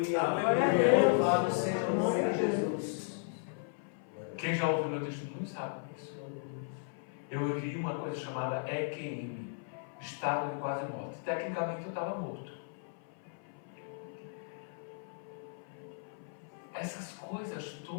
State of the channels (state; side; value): silent; right; 54 dB below the other